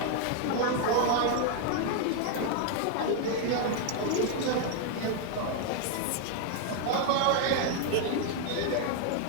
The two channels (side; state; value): both; different; correlation 0.00